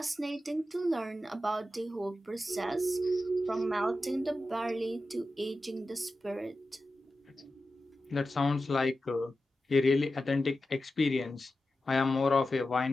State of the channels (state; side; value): normal; both; correlation 0.92